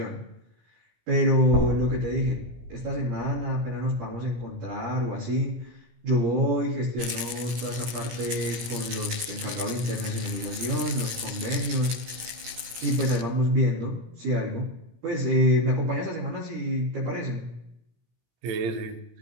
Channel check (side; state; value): left; late; 17 ms